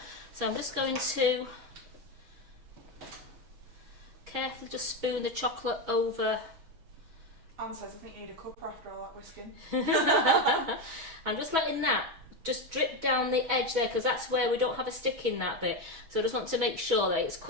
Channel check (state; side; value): late; left; 6.1 ms